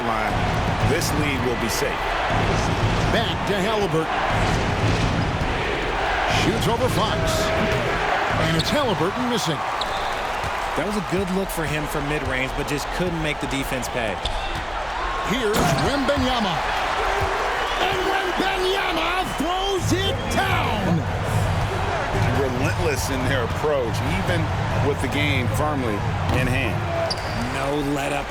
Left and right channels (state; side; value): identical; both; correlation 1.00